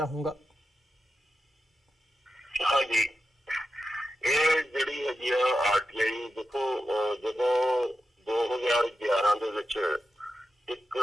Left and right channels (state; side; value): normal; both; correlation 0.90